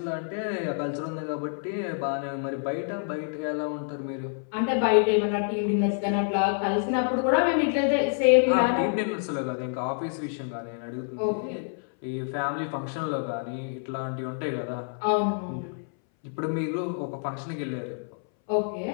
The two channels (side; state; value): right; silent; 60 dB below the other